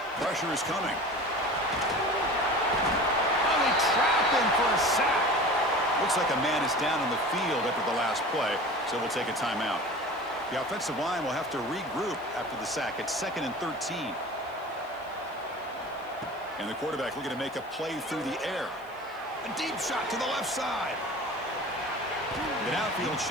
Pressure is coming. Oh, they trap him for a sack. Looks like a man is down on the field after the last play, so we'll take a timeout. The offensive line will have to regroup after the sack. It's 2nd and 13. And the quarterback looking to make a play through the air. A deep shot to the left side. The outfield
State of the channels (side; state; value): left; noise; hiss, 28 dB below the sound